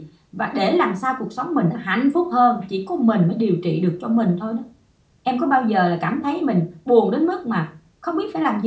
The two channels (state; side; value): identical; both; correlation 1.00